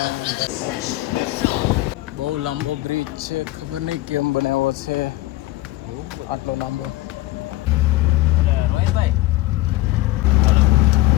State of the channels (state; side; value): quieter; right; 17.3 dB